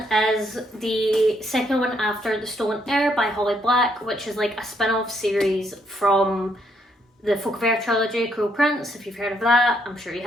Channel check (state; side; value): normal; both; correlation 0.73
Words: is the second one after The Stolen Heir by Holly Black, which is like a spin-off series from the Folk of Air trilogy, Cruel Prince, if you've heard of that, I'm sure you